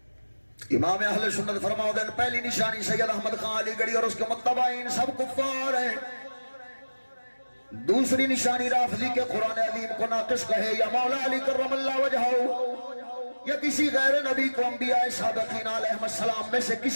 امام اہل سنت فرماؤ دین پہلی نشانی سید احمد خان علی گڑھی اور اس کے متبعین سب کفار ہیں. دوسری نشانی رافضی کے قرآن عظیم کو ناقص کہے یا مولا علی کرم اللہ وجہہ یا کسی غیر نبی کو انبیاء سابقین علیہ السلام میں سے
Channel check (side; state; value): both; inverted; correlation -1.00